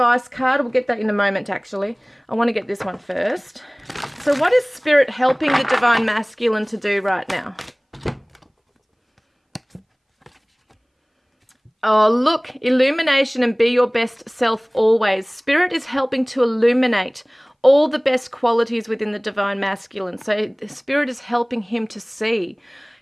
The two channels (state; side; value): identical; both; correlation 1.00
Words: card? We'll get that in a moment, actually. I want to get this one first. So what is Spirit helping the Divine Masculine to do right now? Oh, look, illumination and be your best self always. Spirit is helping to illuminate all the best qualities within the Divine Masculine. So the Spirit is helping him to see